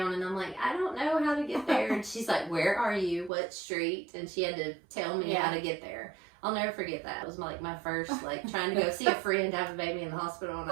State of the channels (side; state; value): left; drops out; at 3.3 s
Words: and I'm like, I don't know how to get there. And she's like, where are you? What street? And she had to tell me how to get there. I'll never forget that. It was like my first, trying to go see a friend have a baby in the hospital, and